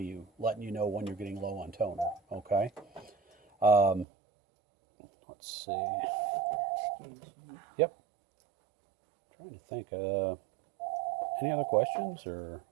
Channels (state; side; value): drops out; left; at 4.0 s